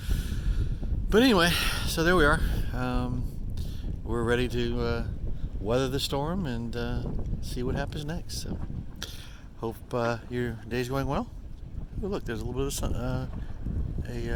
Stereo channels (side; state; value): both; identical; correlation 1.00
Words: But anyway, so there we are. We're ready to weather the storm and see what happens next. So, hope your day's going well. Oh, look, there's a little bit of sun,